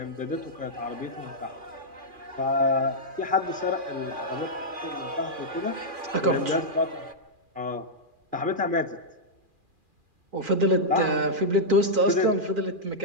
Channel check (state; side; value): late; left; 2.4 ms